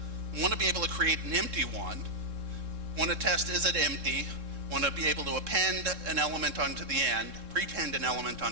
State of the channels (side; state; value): left; late; 3.7 ms